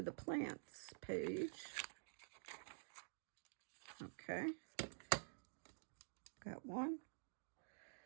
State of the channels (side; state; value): left; silent; digital silence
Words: the plants page. Okay, got one.